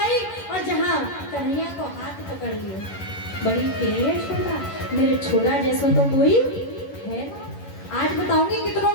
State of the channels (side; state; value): right; late; 11 ms